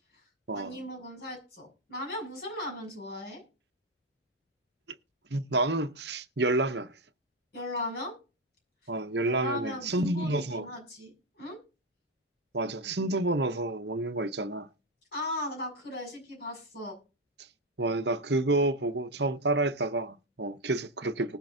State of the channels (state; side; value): normal; both; correlation 0.08